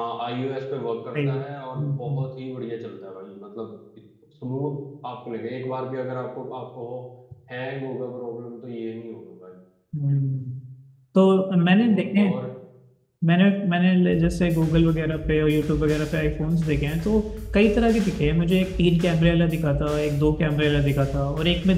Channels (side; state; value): both; identical; correlation 1.00